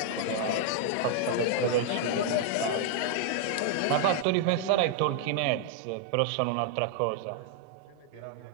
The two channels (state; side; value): different; both; correlation -0.01